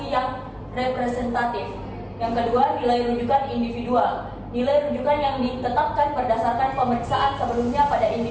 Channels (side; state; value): both; identical; correlation 1.00